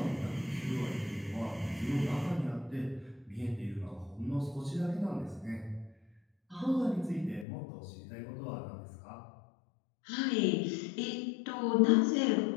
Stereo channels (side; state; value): right; drops out; at 7.5 s